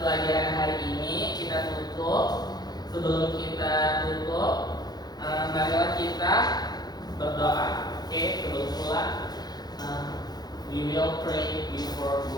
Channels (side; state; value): right; late; 0.19 ms